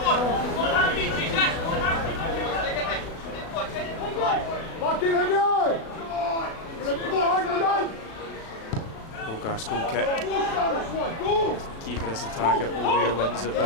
Hogarth's goal kick. Keeper is the target. O'Ware wins it,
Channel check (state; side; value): late; right; 36 ms